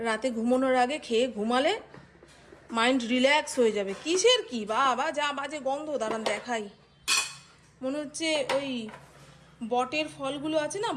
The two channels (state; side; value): identical; both; correlation 1.00